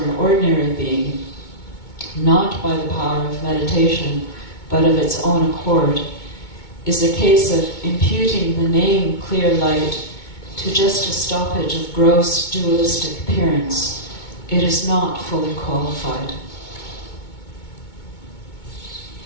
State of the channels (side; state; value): right; late; 2.2 ms